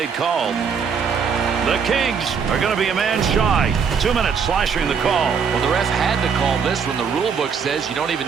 call. The Kings are going to be a man shy. 2 minutes slashing the call. Well, the ref had to call this when the rule book says you don't even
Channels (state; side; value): quieter; left; 6.3 dB